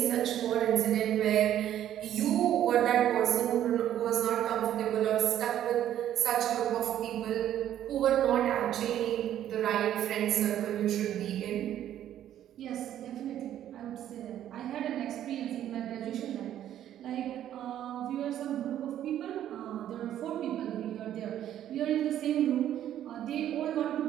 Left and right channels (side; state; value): left; quieter; 11.3 dB